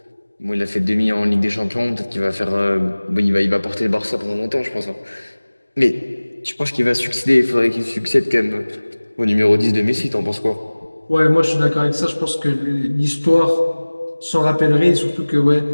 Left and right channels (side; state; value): both; inverted; correlation -1.00